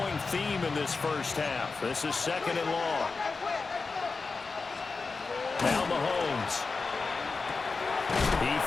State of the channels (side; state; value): right; quieter; 4.3 dB